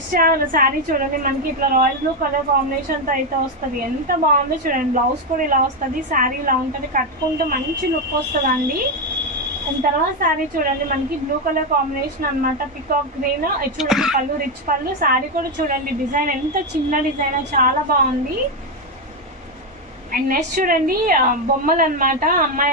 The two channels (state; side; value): normal; both; correlation 0.07